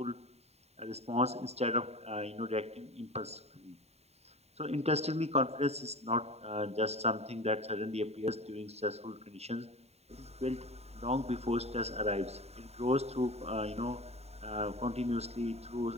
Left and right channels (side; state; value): left; late; 0.31 ms